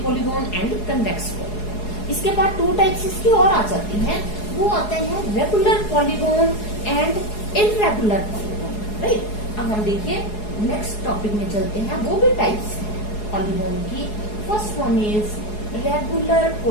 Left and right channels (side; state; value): right; late; 4.8 ms